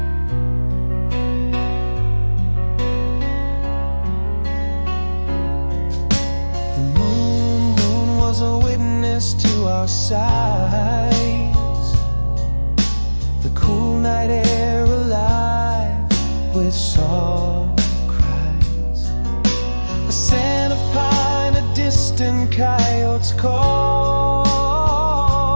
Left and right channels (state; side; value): inverted; both; correlation -1.00